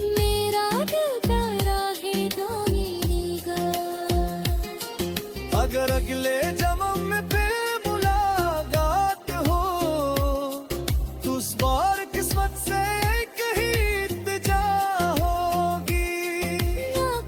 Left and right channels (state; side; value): identical; both; correlation 1.00